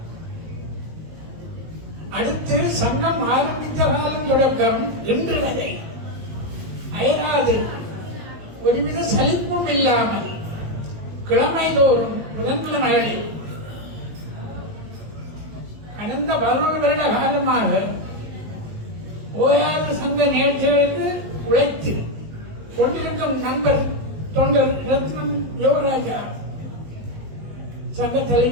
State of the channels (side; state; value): left; late; 18 ms